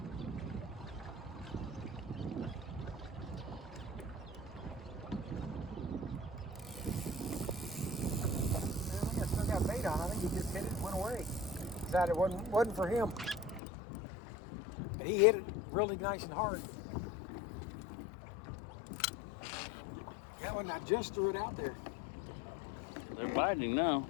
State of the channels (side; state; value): right; drops out; at 13.6 s